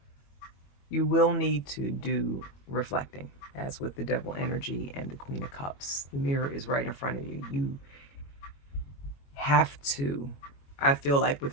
you will need to do reflecting, as with the Devil energy and the Queen of Cups. The mirror is right in front of you. You have to, I feel like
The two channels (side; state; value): right; late; 21 ms